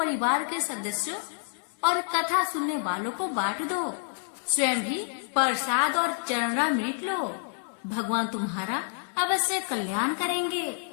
के सदस्यों और कथा सुनने वालों को बांट दो। स्वयं भी प्रसाद और चरणामृत लो। भगवान तुम्हारा अवश्य कल्याण करेंगे।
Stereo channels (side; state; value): right; silent; digital silence